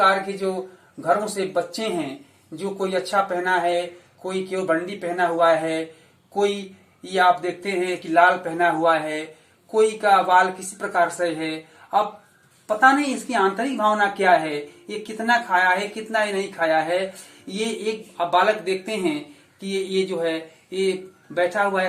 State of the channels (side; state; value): both; identical; correlation 1.00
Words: के जो घरों से बच्चे हैं, जो कोई अच्छा पहना है, कोई केवल बंडी पहना हुआ है, कोई ये आप देखते हैं कि लाल पहना हुआ है, कोई का बाल किसी प्रकार से है। अब पता नहीं इसकी आंतरिक भावना क्या है, ये कितना खाया है, कितना ही नहीं खाया है। ये एक अब बालक देखते हैं कि ये जो है ये बैठा हुआ